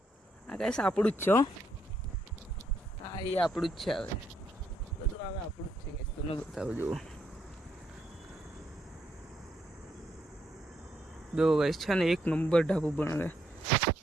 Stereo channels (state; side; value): normal; both; correlation 0.76